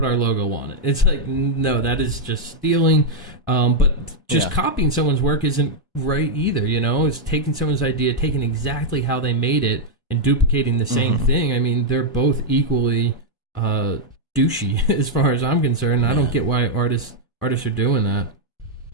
our logo on it. It's like, no, that is just stealing. But just copying someone's work isn't right either, It's taking someone's idea, taking exactly how they made it, and duplicating the same thing. I mean, they're both equally douchey as far as I'm concerned. I don't get why artists are doing that.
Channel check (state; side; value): normal; both; correlation -0.02